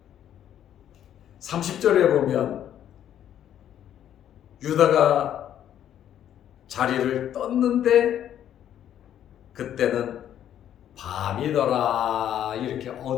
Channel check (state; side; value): quieter; right; 10.6 dB